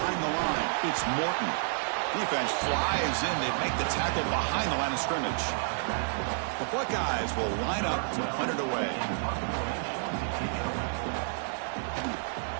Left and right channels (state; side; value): silent; left; 57 dB below the other